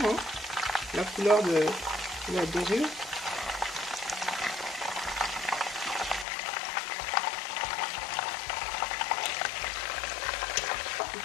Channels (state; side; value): drops out; right; at 6.2 s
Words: La couleur de la dorure.